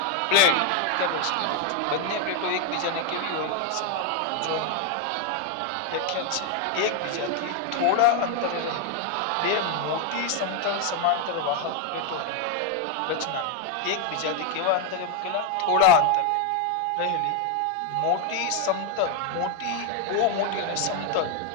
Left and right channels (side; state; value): both; different; correlation 0.01